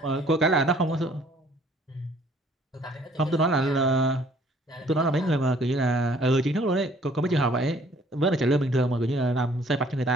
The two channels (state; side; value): normal; both; correlation 0.59